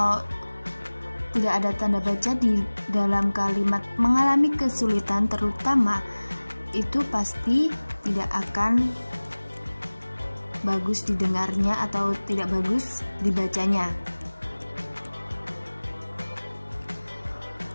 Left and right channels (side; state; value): both; inverted; correlation -1.00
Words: tidak ada tanda baca di dalam kalimat mengalami kesulitan terutama, itu pasti tidak akan bagus didengarnya atau tidak bagus dibacanya.